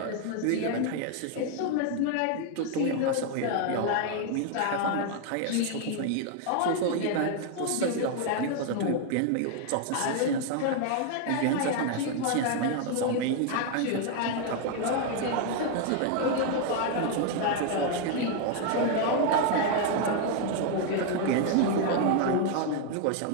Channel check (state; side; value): different; both; correlation 0.00